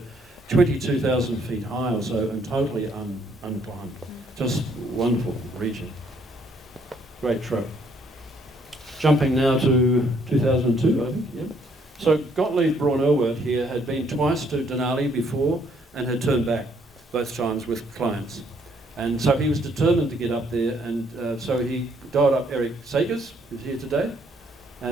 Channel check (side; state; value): both; normal; correlation 0.67